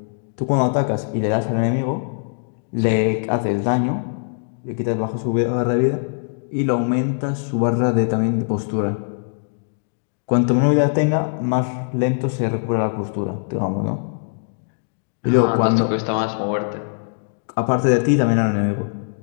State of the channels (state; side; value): silent; right; digital silence